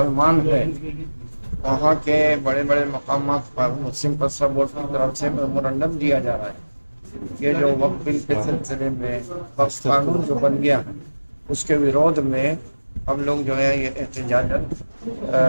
हैं वहाँ के बड़े बड़े मकामात पर मुस्लिम पर्सनल बोर्ड की तरफ से मेमोरेंडम दिया जा रहा है। ये जो वक्फ बिल के सिलसिले में वक्फ कानून जो बन गया है उसके विरोध में हम लोग जो है ये एहतजाजन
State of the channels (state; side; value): inverted; both; correlation -1.00